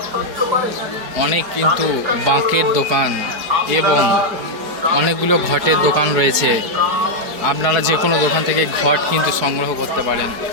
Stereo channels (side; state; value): left; late; 4.7 ms